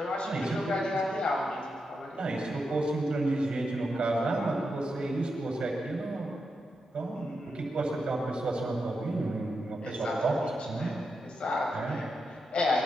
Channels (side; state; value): both; normal; correlation 0.86